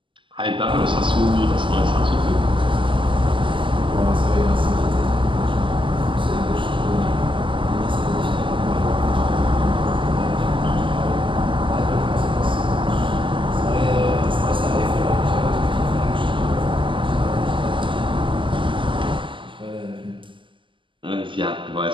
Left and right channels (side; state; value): left; late; 0.25 ms